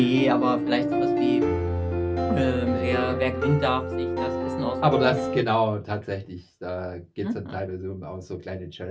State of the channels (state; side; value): identical; both; correlation 1.00